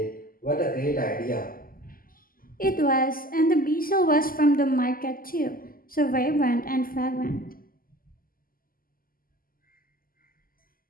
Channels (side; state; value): right; late; 0.42 ms